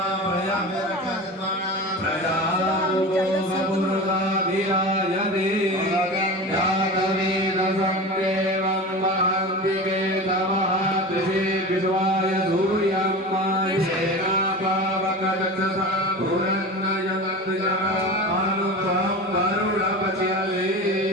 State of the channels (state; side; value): normal; both; correlation 0.30